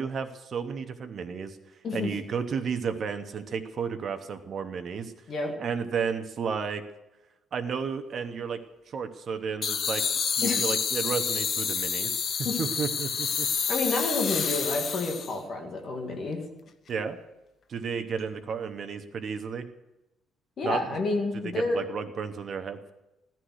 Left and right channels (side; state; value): both; normal; correlation 0.71